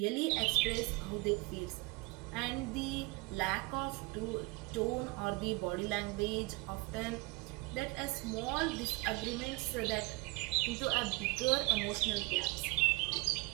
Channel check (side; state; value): left; quieter; 25.1 dB